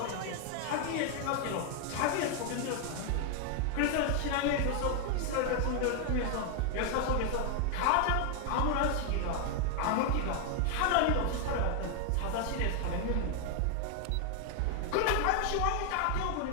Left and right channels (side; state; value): both; different; correlation 0.00